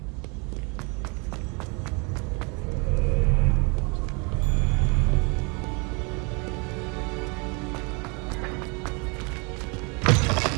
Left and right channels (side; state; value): left; quieter; 31.6 dB